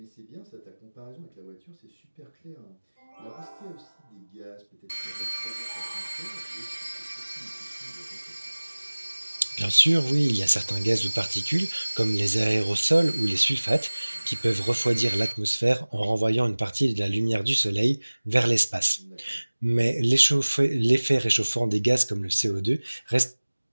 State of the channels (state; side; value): inverted; both; correlation -1.00